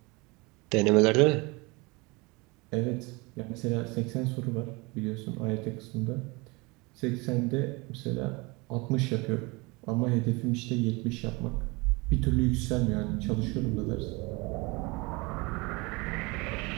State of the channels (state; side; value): quieter; left; 26.1 dB